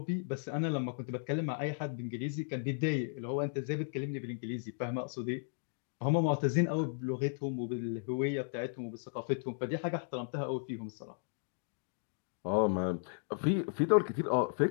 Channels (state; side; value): silent; right; digital silence